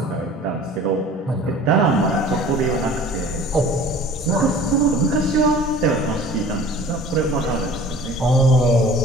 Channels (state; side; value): normal; both; correlation 0.45